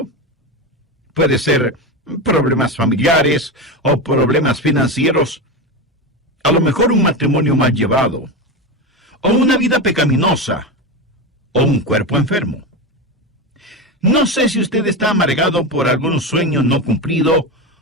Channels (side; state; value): both; normal; correlation 0.18